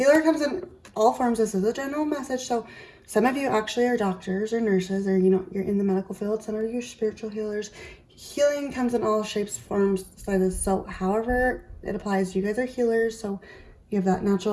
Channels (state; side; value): identical; both; correlation 1.00